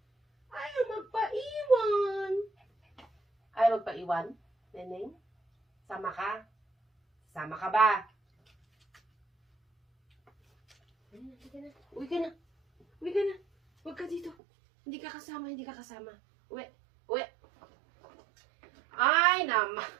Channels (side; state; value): left; drops out; at 14.4 s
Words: Ayaw magpaiwan. Ayaw magpaiwan, Neneng? Sama ka? Sama ka ba? Uwi ka na. Uwi ka na. Huwag ka dito. Hindi ka kasama, hindi ka kasama. Uwi. Uwi. Ay, naman.